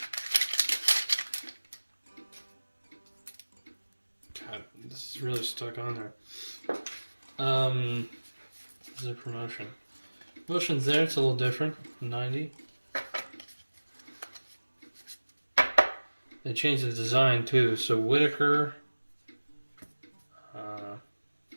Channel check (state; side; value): inverted; both; correlation -1.00